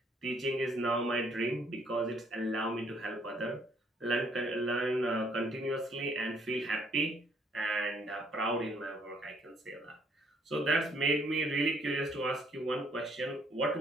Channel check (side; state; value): both; normal; correlation 0.66